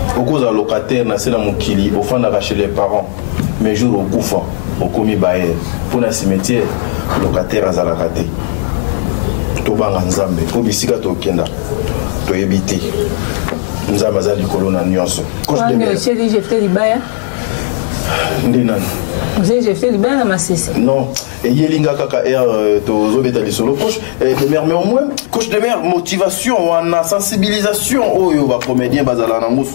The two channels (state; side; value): silent; right; digital silence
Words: Au cause de locataire, c'est la Mokili, au fond chez les parents, mais jour au Koufa. Au commis Bayer pour le cimetière locataire à Zalakate Tobanga Nzambe pour bisika to kenda to ebité Nzambe za likolo na nyonso coach de mer j'ai fait libaya ndenan j'ai fait libaya na masisi non et yelinga kaka to zobeta lisolo coach de mer mais au moins coach de mer motivation wana sensibilisation oyo ba comédien bazala nango